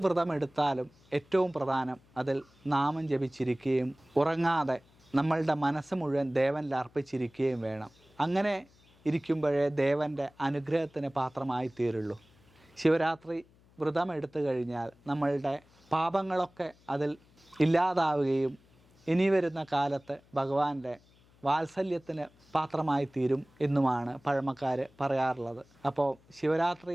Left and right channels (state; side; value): noise; left; hum, 30 dB below the sound